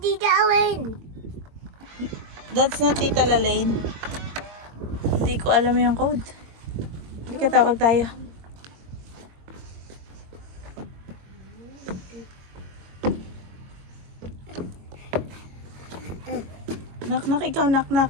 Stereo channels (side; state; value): left; late; 22 ms